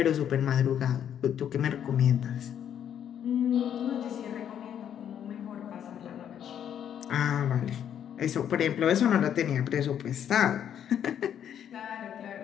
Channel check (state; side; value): quieter; right; 9.4 dB